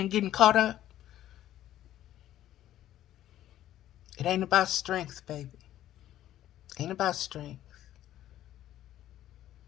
getting caught up? It ain't about strength, baby. Ain't about strength.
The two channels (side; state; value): right; quieter; 12.8 dB